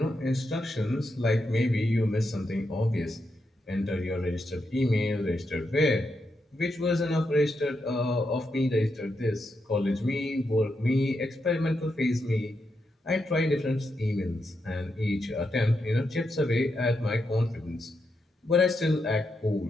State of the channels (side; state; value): both; normal; correlation 0.84